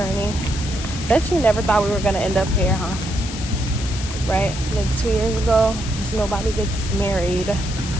Bet you never thought we were gonna end up here, huh? Right? Like 2 years ago, because nobody gets married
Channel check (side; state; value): left; noise; hiss, 10 dB below the sound